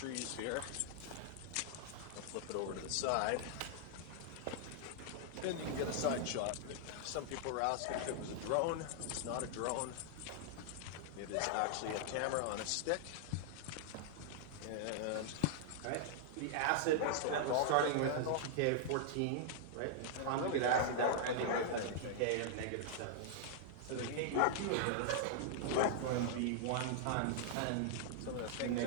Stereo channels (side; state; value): both; different; correlation -0.01